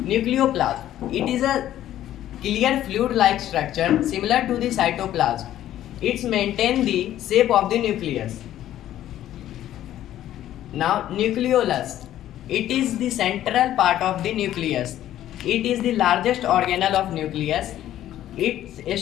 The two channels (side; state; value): right; quieter; 12.5 dB